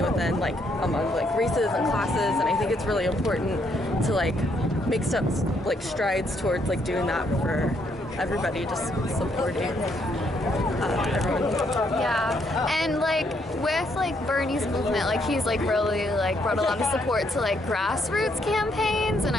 within like among like races and classes, and I think it's really important to like make some like strides towards like doing that for everybody, just supporting everyone. Yeah, and like with like Bernie's movement, like he's like really like brought a lot of support to like grassroots campaigns, and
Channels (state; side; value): normal; both; correlation 0.73